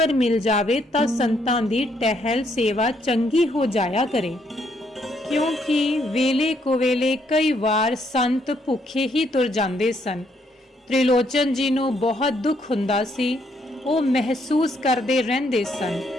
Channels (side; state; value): both; normal; correlation 0.72